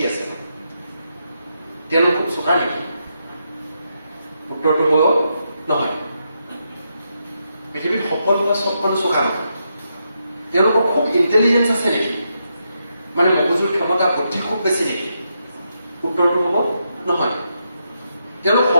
আছে? তেওঁলোক খুব চোকা নেকি? উত্তৰটো হ'ব নহয়। পৃথিৱীত সফল হোৱা চব মানুহ চোকা নহয়। তেওঁলোকৰ খুব ইণ্টেলিজেঞ্চ আছে নেকি? মানে মগজুৰ ক্ষমতা বুদ্ধি খুব বেছি নেকি? উত্তৰটো হ'ব নহয়। তেওঁলোক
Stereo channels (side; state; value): both; inverted; correlation -0.82